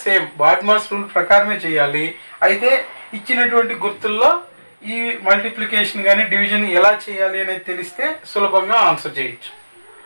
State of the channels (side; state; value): both; inverted; correlation -1.00